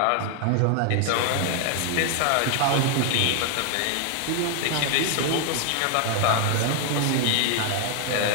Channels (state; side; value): different; both; correlation 0.00